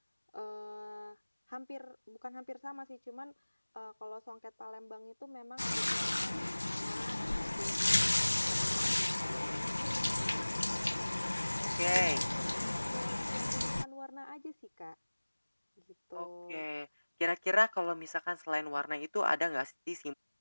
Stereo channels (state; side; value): inverted; both; correlation -1.00